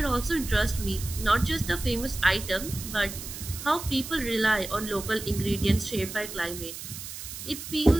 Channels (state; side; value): noise; right; hiss, 10 dB below the sound